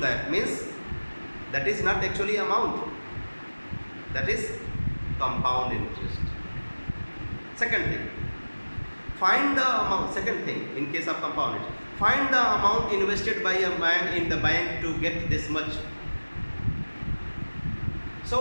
means that is not actually amount, that is compound interest. Second thing, find the amount. Second thing, in case of compound interest, find the amount invested by a man in the bank to get this much. So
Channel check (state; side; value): inverted; both; correlation -1.00